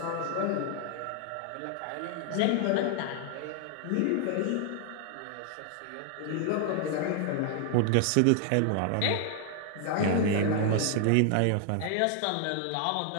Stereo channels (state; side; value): different; both; correlation 0.00